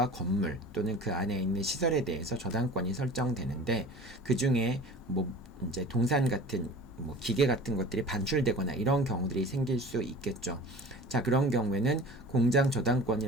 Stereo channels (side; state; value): both; normal; correlation 0.39